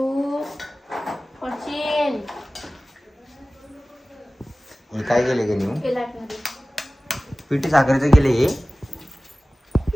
पडशील. हे काय केले का नेऊ? केला पिठी साखरेचं केले हे.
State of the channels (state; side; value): normal; both; correlation 0.97